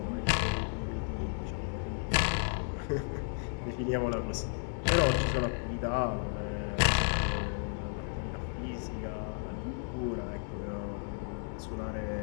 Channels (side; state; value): right; silent; 55 dB below the other